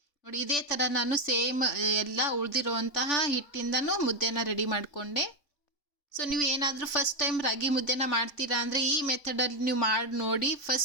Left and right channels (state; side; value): late; right; 3.5 ms